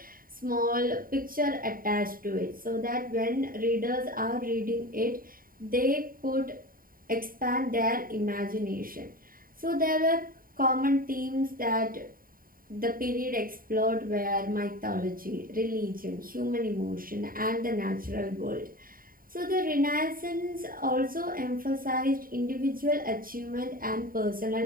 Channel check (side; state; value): left; late; 0.41 ms